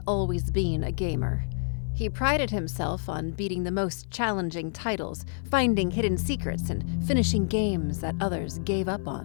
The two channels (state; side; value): silent; right; digital silence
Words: always been a gamer. He prided himself on beating the most challenging titles, finding hidden secrets, and finishing games that others gave up